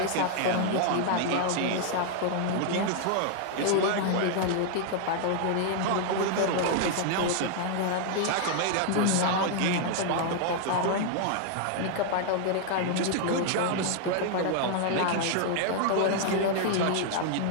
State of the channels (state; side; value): different; both; correlation 0.00